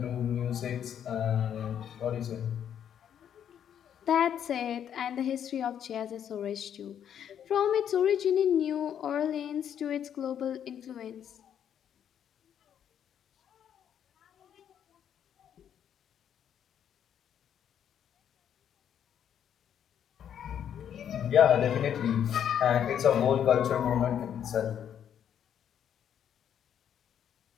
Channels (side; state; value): right; quieter; 9.2 dB